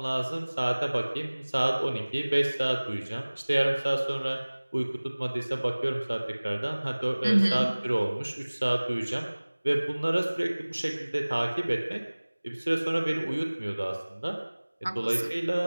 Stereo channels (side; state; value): both; inverted; correlation -1.00